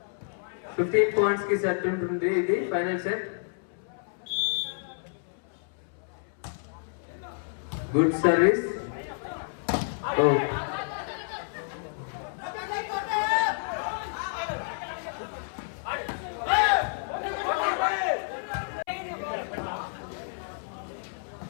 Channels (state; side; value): silent; right; 58 dB below the other